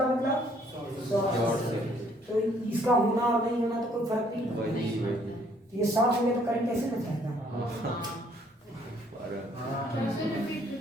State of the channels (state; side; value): normal; both; correlation 0.64